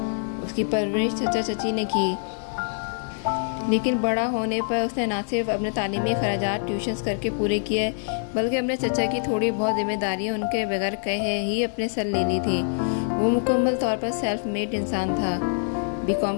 اس کی پرورش چچا چچی نے کی، لیکن بڑا ہونے پر اس نے نہ صرف اپنے تعلیمی اخراجات ٹیوشنز کر کے پورے کیے، بلکہ اپنے چچا کی تھوڑی بہت ذمہ داریاں ان کے بغیر کہے ہی اپنے سر لے لی تھی۔ وہ مکمل طور پر سیلف میڈ انسان تھا۔ BCom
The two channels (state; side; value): silent; right; 56 dB below the other